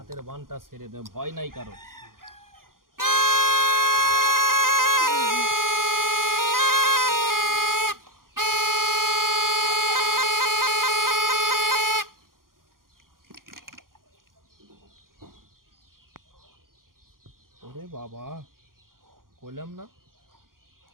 বানটা ছেড়ে দে, ভয় নাই কারো। ওরে বাবা, কইলাম না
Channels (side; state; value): left; late; 0.91 ms